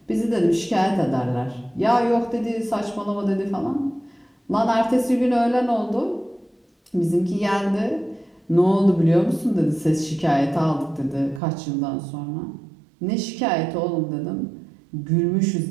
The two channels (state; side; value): drops out; left; at 11.4 s